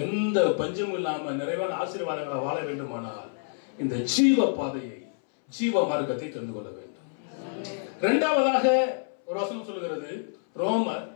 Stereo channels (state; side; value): silent; right; 60 dB below the other